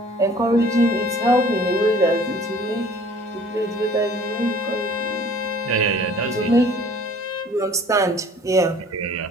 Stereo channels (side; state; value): both; normal; correlation 0.51